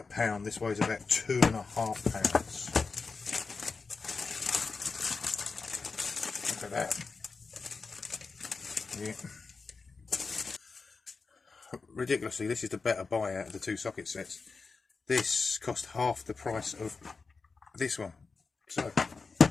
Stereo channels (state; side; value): quieter; right; 4.5 dB